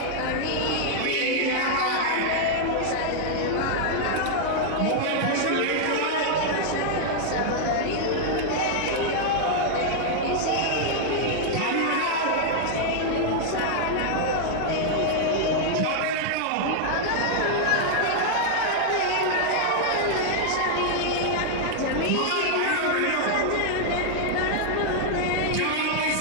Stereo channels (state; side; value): different; both; correlation -0.01